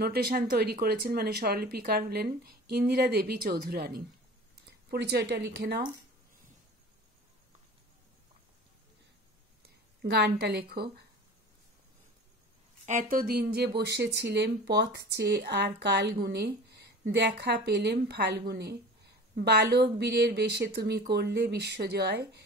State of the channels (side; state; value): both; normal; correlation 0.39